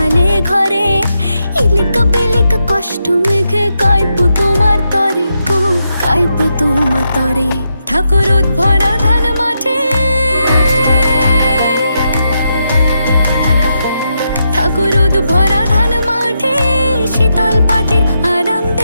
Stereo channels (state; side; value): inverted; both; correlation -0.83